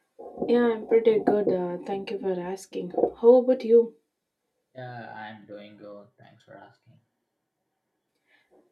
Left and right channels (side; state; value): both; identical; correlation 1.00